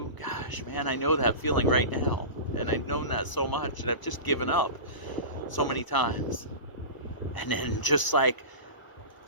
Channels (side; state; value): right; late; 1.0 ms